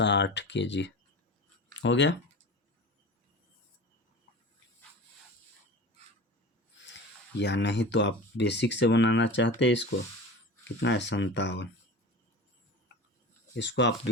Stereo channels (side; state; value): both; normal; correlation 0.34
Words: kg हो गया। या नहीं तो आप बेसिक से बनाना चाहते हैं इसको, कितना है? 57। इसको आप